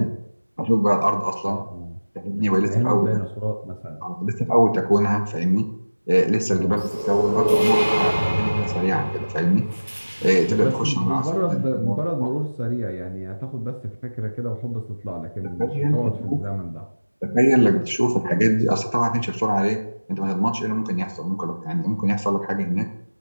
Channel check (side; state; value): both; inverted; correlation -1.00